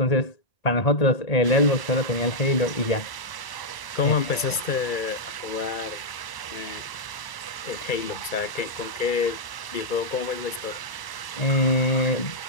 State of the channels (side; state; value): right; late; 1.0 ms